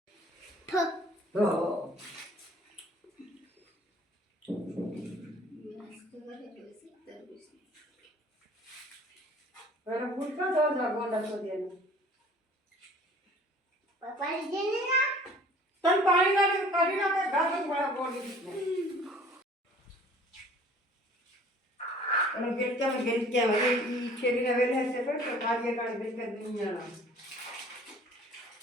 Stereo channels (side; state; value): both; normal; correlation 0.50